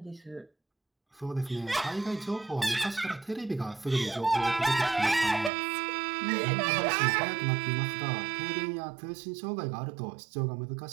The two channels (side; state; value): left; drops out; at 5.5 s